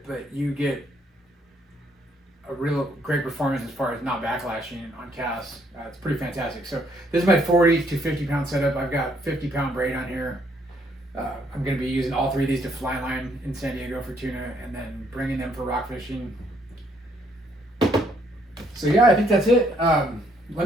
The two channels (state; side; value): normal; both; correlation 0.69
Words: but you get a real great performance as far as not backlashing on casts. It's pretty fantastic. So this is my 40 to 50 pound setup. I've got 50 pound braid on here. I'm going to be using all 3 of these to fly line in San Diego for tuna, and then bringing them for rock fishing. So yeah, I think that's it.